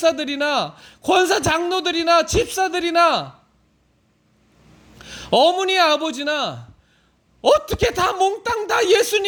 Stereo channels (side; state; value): both; identical; correlation 1.00